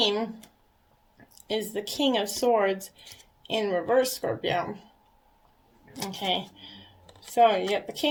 is the King of Swords in reverse, Scorpio. Okay. So you got the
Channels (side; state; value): both; identical; correlation 1.00